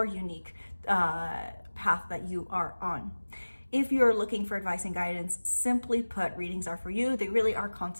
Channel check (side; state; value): both; inverted; correlation -1.00